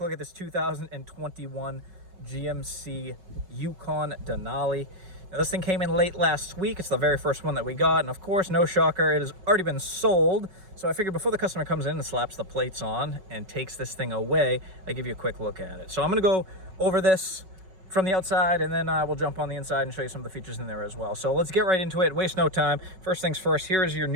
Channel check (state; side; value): late; left; 5.4 ms